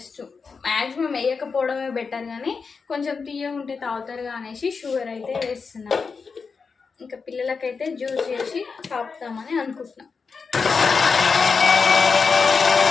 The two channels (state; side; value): quieter; right; 5.1 dB